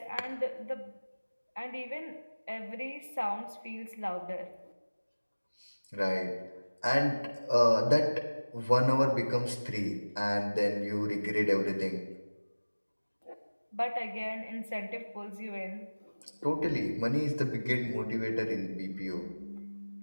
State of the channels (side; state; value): both; inverted; correlation -1.00